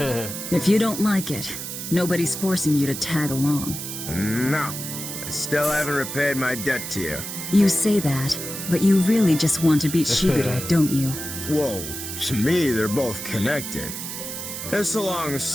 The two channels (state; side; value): noise; right; hiss, 7 dB below the sound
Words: you don't like it, nobody's forcing you to tag along. No. I still haven't repaid my debt to you. You say that, but you really just want to beat Shigure, don't you? Whoa, to me they're both connected. It's a long